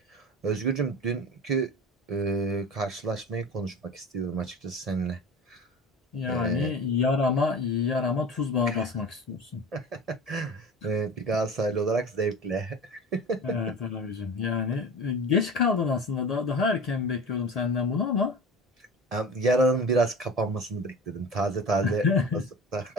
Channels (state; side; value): normal; both; correlation 0.35